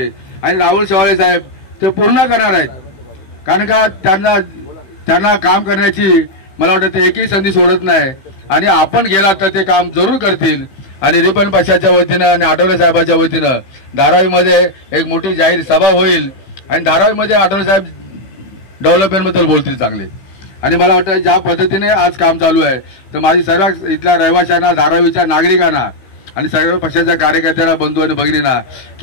आणि राहुल शेवाळे साहेब ते पूर्ण करणार आहेत. कारण का त्यांना काम करण्याची मला वाटतं ते एकही संधी सोडत नाही. आणि आपण गेलात तर ते काम जरूर करतील. आणि रिपन पक्षाच्या वतीनं आणि आठवले साहेबांच्या वतीनं धारावीमध्ये एक मोठी जाहीर सभा होईल आणि धारावीमध्ये आढळराव साहेब डेव्हलपमेंटबद्दल बोलतील चांगले. आणि मला वाटतं ज्या पद्धतीने आज काम चालू आहे तर माझी सर्व इथल्या रहिवाशांना, धारावीच्या नागरिकांना आणि सर्व पक्षाच्या कार्यकर्त्यांना, बंधू आणि भगिनींना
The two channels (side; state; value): right; late; 16 ms